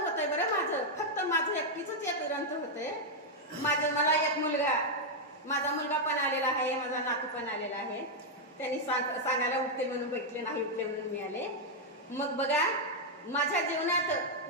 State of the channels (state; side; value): normal; both; correlation -0.01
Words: बरं माझं, फक्त माझं एकटीचंच एक ग्रंथ होतंय. मला एक माझा मुलगा पण आलेला आहे, माझा नातू पण आलेला आहे. त्यांनी सांगायला उठते म्हणून बैठले, नाही उठले म्हणून मी आले. मग बघा, माझ्या जीवनात